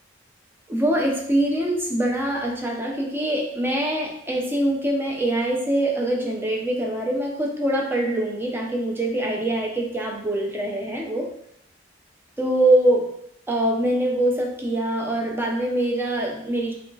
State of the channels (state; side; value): normal; both; correlation 0.65